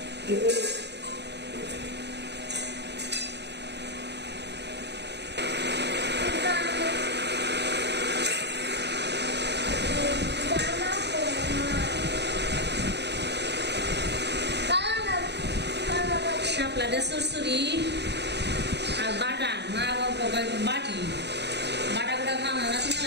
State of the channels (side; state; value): left; late; 0.50 ms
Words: শাপলা দিয়ে সুরসুরি আর বাটা মা বাবা বাটি বাটা গুলা খাওয়া না